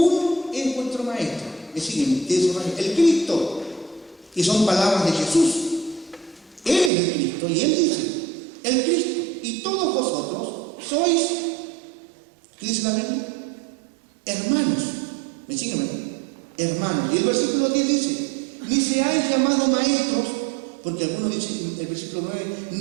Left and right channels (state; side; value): drops out; left; at 6.9 s